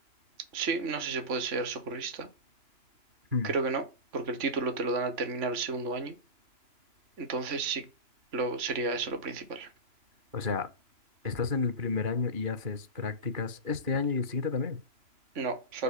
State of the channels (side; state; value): left; late; 2.9 ms